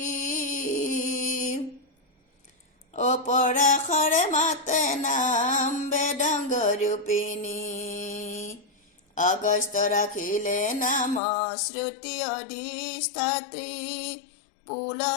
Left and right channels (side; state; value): right; drops out; at 11.2 s